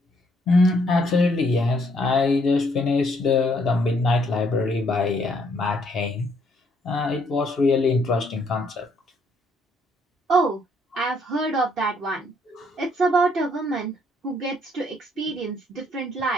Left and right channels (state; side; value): normal; both; correlation 0.69